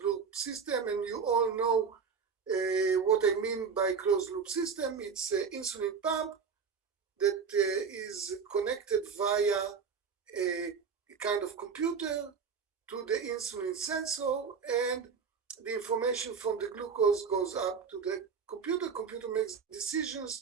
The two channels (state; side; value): quieter; left; 5.9 dB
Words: loop system, and you all know what I mean by closed loop system. It's an insulin pump that is connected via a kind of computer to the insulin sensor, and the information from the glucose goes up to the computer. Computer makes